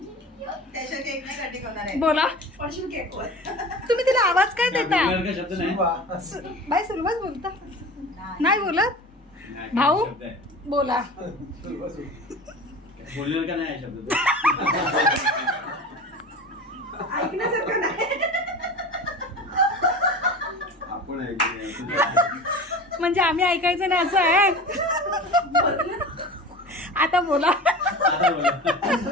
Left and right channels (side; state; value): both; normal; correlation 0.34